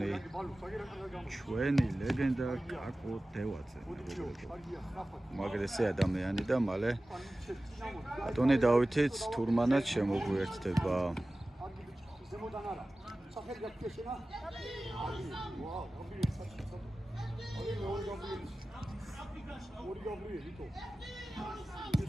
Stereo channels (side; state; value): both; normal; correlation 0.96